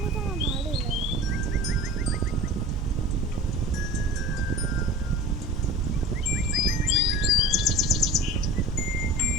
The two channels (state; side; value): normal; both; correlation 0.37